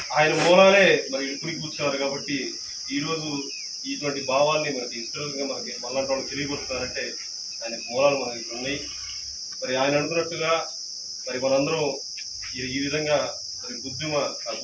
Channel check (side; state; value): both; identical; correlation 1.00